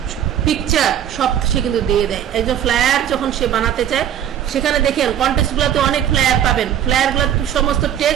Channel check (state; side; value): quieter; left; 10.2 dB